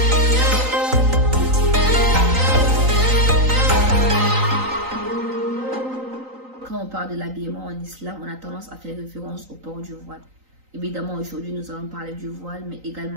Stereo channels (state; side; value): late; left; 3.9 ms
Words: Quand on parle de l'habillement en islam, on a tendance à faire référence au port du voile. Évidemment, aujourd'hui, nous allons parler du voile, mais